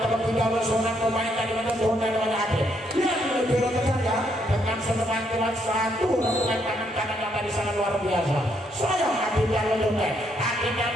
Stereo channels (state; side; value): normal; both; correlation 0.74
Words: bermain dari menentukan dengan adil. Lihat lebih ya dengan semangat kuat satu rengkuan tangan kanan yang tadi sangat luar biasa. Saya adil yang menentukan. Adil yang